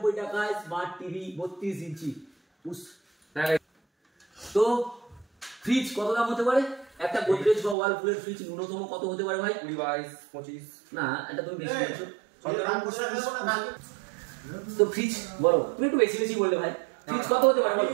টাকায় স্মার্ট টিভি 32 ইঞ্চি। তো ফ্রিজ কত দাম হতে পারে? একটা গোদরেজ বা ওয়ালপুলের ফ্রিজ ন্যূনতম কত হতে পারে ভাই? 20, 22, 25 না এটা তুমি বেশি বলছো। তো ফ্রিজ বলো, তুমি একটু বেশি বেশি বললে ভাই। ফ্রিজ কত হতে পারে বলো?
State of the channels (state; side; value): drops out; left; at 7.8 s